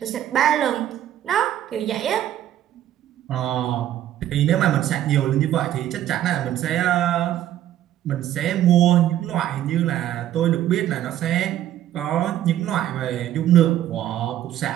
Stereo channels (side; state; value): left; quieter; 12.1 dB